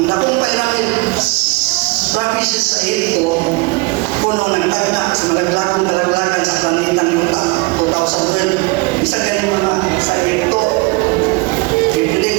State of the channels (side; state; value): left; quieter; 26.0 dB